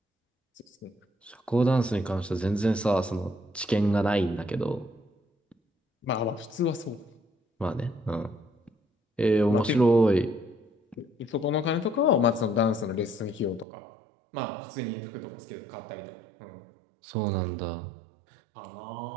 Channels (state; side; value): drops out; left; at 13.7 s